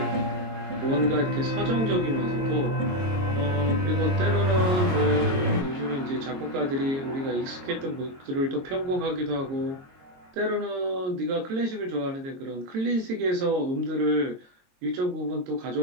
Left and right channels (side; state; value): left; late; 22 ms